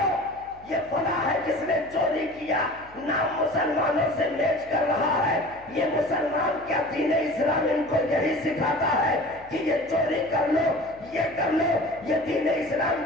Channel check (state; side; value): noise; left; hum, 25 dB below the sound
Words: ये फला है जिसने चोरी किया, नाम मुसलमानों से मैच कर रहा है। ये मुसलमान क्या दीन इस्लाम इनको यही सिखाता है कि ये चोरी कर लो, ये कर लो, ये दीन इस्लाम